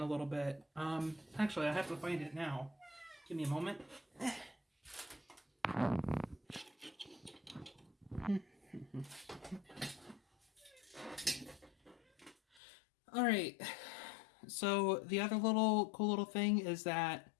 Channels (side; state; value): right; drops out; at 12.6 s